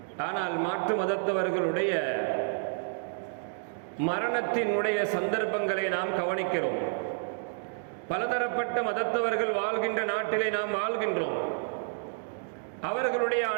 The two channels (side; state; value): left; silent; digital silence